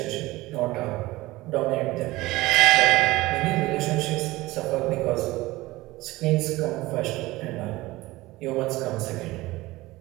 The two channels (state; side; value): quieter; left; 19.2 dB